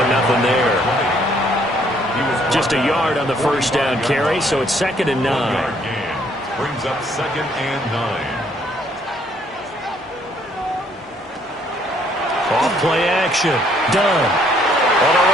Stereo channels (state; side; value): normal; both; correlation 0.66